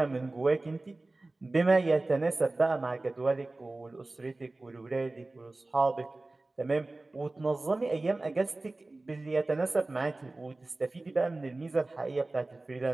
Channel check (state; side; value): quieter; left; 3.0 dB